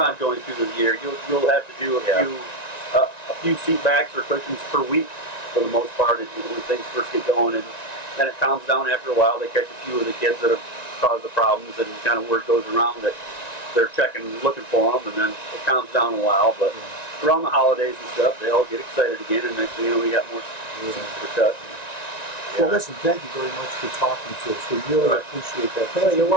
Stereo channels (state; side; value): late; right; 1.9 ms